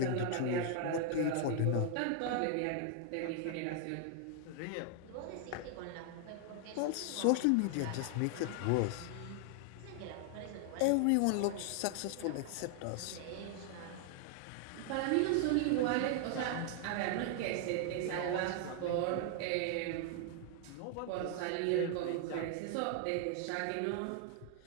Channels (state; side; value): different; both; correlation 0.00